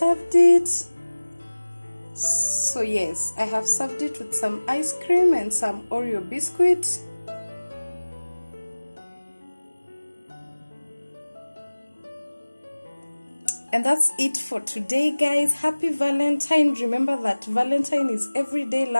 it. So yes, I have served it with some ice cream and some Oreo biscuit. And that's it for today, guys. Happy Valentine. Remember that Valentine is every day.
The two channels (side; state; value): both; inverted; correlation -1.00